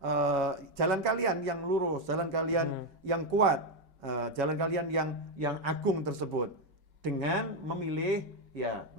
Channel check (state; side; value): late; left; 5.3 ms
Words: kalian yang lurus, jalan kalian yang kuat, jalan kalian yang agung tersebut dengan memilih ya